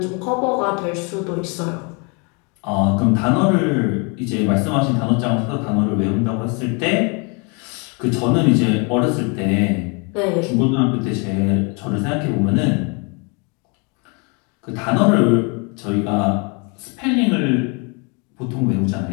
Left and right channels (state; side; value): quieter; right; 33.0 dB